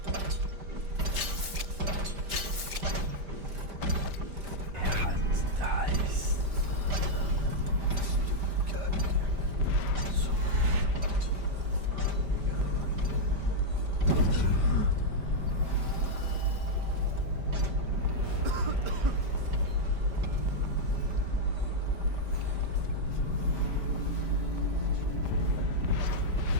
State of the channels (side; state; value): left; late; 5.1 ms